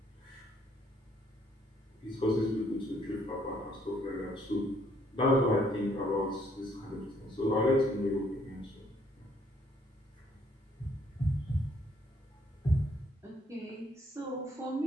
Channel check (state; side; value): normal; both; correlation 0.67